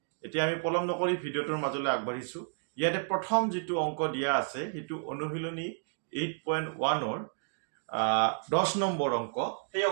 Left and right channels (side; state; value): left; silent; digital silence